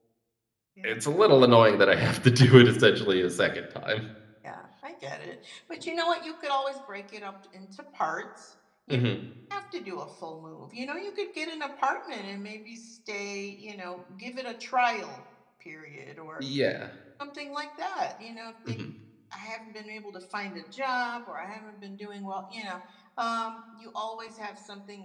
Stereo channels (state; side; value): identical; both; correlation 1.00